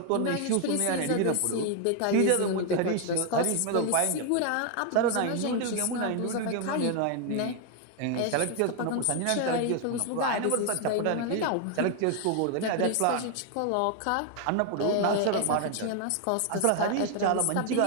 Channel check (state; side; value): different; both; correlation 0.00